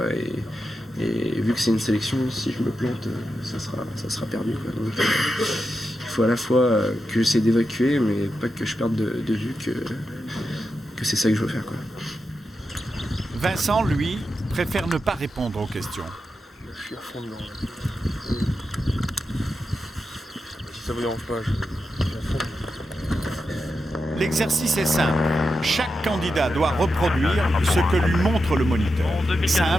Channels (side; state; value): both; normal; correlation 0.88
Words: Et vu que c'est une sélection, si je me plante, ça sera perdu, quoi. Donc, il faut à la fois que j'essaie d'évacuer, mais pas que je perde de vue que c'est ça que je veux faire, quoi. Vincent, lui, préfère ne pas répondre aux questions. Je suis à fond dedans. Si ça vous dérange pas, je suis à fond. L'exercice est simple. Chaque candidat doit reproduire ce que lui montre le moniteur.